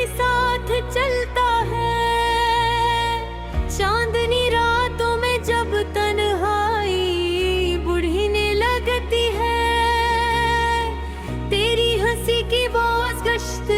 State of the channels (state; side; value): identical; both; correlation 1.00